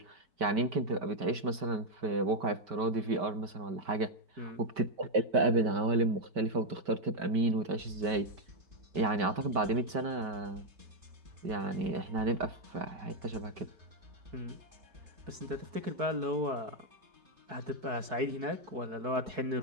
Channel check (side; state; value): left; late; 5.2 ms